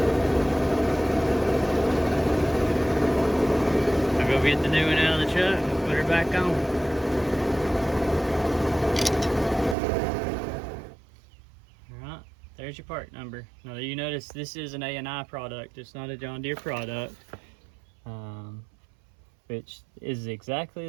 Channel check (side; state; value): left; drops out; at 9.8 s